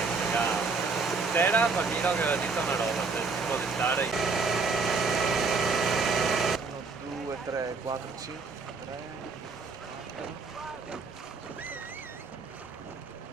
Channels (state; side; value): quieter; left; 4.4 dB